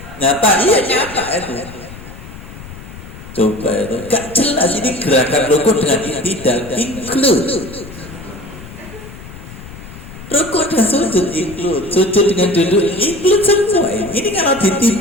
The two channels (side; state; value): left; noise; rumble, 15 dB below the sound